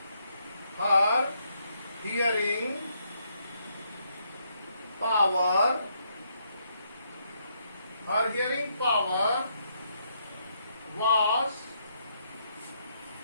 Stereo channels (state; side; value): inverted; both; correlation -0.75